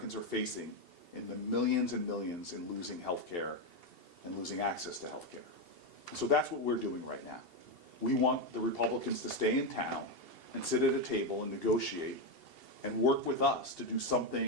are facing in the millions and millions in losing health care and losing access to health care. And so that's what we're doing right now. We want the Republicans to stay in town and sit at a table and negotiate and work with us to do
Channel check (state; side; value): late; left; 2.8 ms